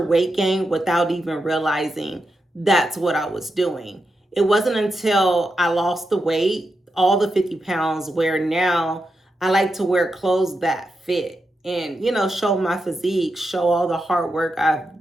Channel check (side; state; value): both; normal; correlation 0.87